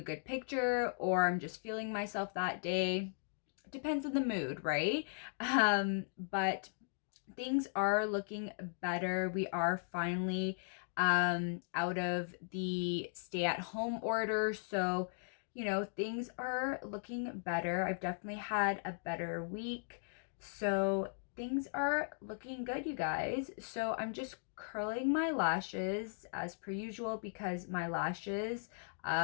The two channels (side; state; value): right; silent; digital silence